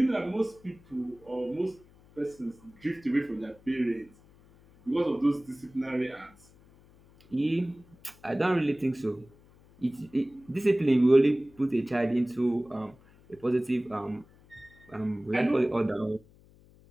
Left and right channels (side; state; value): left; noise; hum, 27 dB below the sound